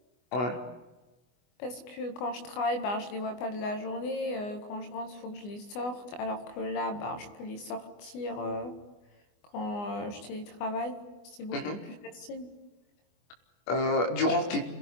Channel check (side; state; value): right; late; 24 ms